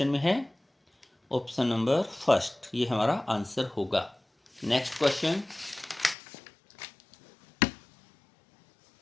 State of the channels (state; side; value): drops out; right; at 6.2 s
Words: में है, ऑप्शन नंबर फर्स्ट, ये हमारा आंसर होगा। नेक्स्ट क्वेश्चन,